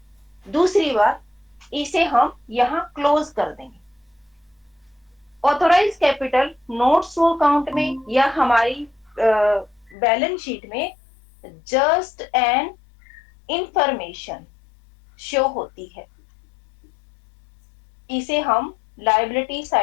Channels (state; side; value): drops out; right; at 10.0 s